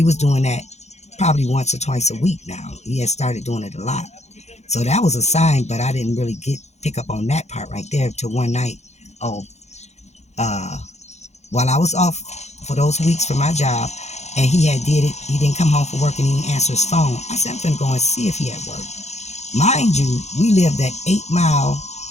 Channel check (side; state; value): right; late; 0.32 ms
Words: was doing that probably once or twice a week now. He had started doing it a lot. So that was a sign, but I didn't really pick up on that part right there till one night. While I was off for those weeks for my job, and he didn't come home from work and he didn't answer his phone. I said, I'm finna go and see if he at work. Mind you, we lived at 8 Mile